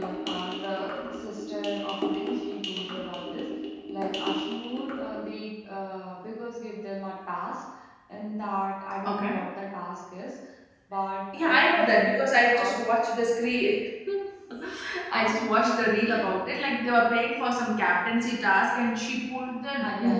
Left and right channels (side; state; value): both; identical; correlation 1.00